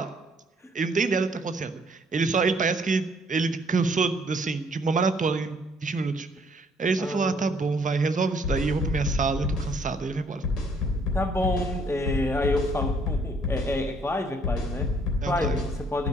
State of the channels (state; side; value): normal; both; correlation 0.64